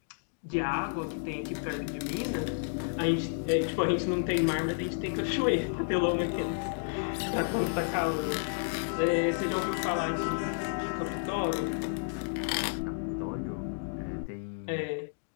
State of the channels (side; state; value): right; silent; digital silence